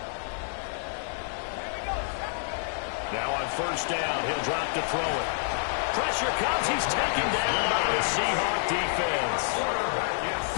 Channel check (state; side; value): silent; right; digital silence